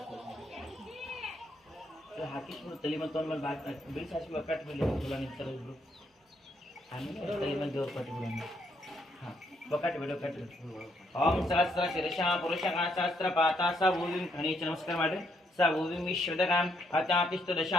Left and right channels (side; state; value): both; normal; correlation 0.73